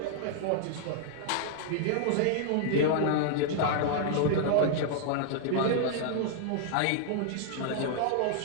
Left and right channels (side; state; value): both; different; correlation -0.01